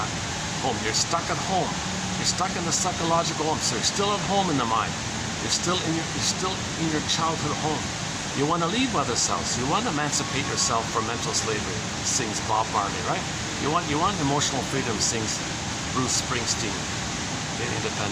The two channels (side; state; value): both; identical; correlation 1.00